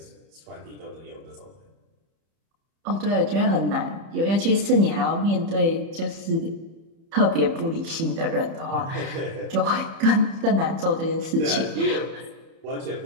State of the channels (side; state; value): left; late; 30 ms